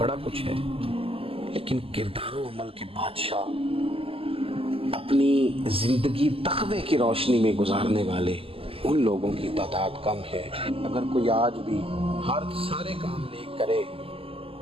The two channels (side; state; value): left; late; 0.27 ms